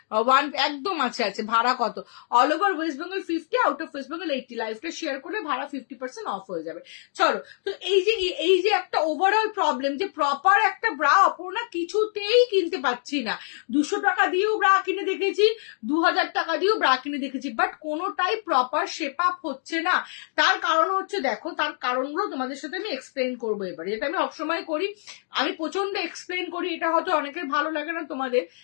একদম আছে আছে। ভাড়া কত? All over West Bengal 50, out of West Bengal 80। লাইফটা শেয়ার করলে ভাড়া 50% অফ হয়ে যাবে। চলো, তো এই যে একটা ওভারঅল প্রবলেম যে প্রপার একটা ব্রা অপর্ণা কিছুতেই কিনতে পাচ্ছি না। 200 টাকা দিয়েও ব্রা কিনে দেখেছি, 2000 টাকা দিয়েও ব্রা কিনে দেখেছি, বাট কোনোটাই প্রপার শেপ আপ হচ্ছে না। তার কারণ হচ্ছে, দেখো তার কারণগুলো তোমাদের সাথে আমি এক্সপ্লেন করবো এবারে, যেটা আমি সবসময় করি, আমি প্রচন্ড এক্সপ্লেন করি। এটা হয়তো অনেকের ভালো লাগে না, তোমাদের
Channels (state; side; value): silent; right; digital silence